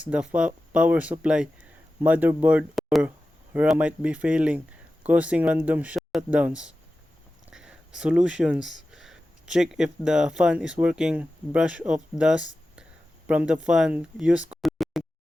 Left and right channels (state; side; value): normal; both; correlation 0.94